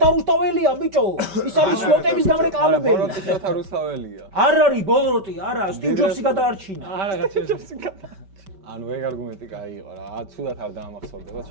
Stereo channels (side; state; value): left; late; 5.2 ms